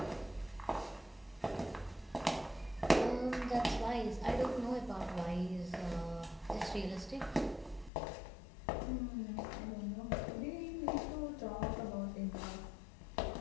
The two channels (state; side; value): drops out; right; at 7.9 s